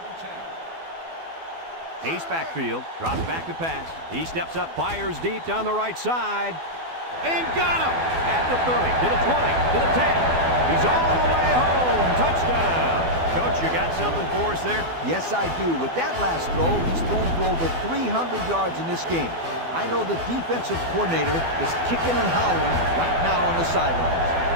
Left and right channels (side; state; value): left; late; 12 ms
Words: Ace backfield, drops back to pass. He steps up, fires deep down the right side, and got him! At the 30, to the 20, to the 10. He's all the way home. Touchdown! Coach, you got something for us there? Yes, I do. With that last throw, he's thrown for over 300 yards in this game. I know the defensive coordinator is kicking and howling right now on the sidelines.